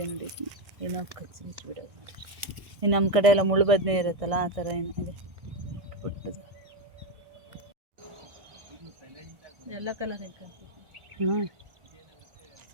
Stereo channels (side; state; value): left; late; 1.6 ms